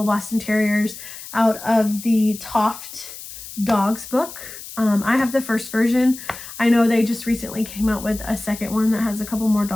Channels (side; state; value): left; noise; hiss, 13 dB below the sound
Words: Boston Terriers out of the Toft Dogs book. I have the first version. I know they just recently came out with a second one that has a couple more